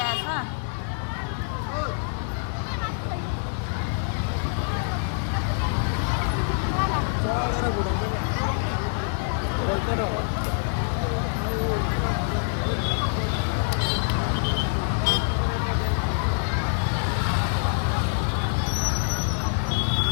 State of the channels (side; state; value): right; silent; digital silence